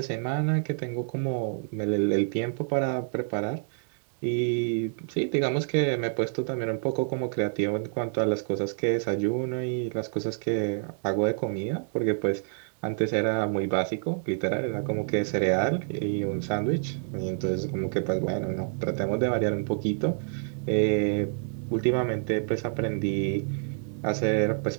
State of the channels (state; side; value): silent; left; digital silence